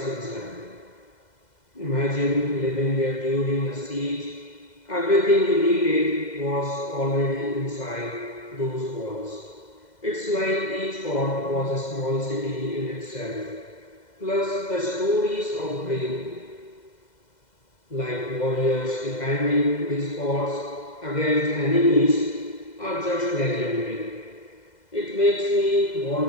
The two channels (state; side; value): late; right; 2.0 ms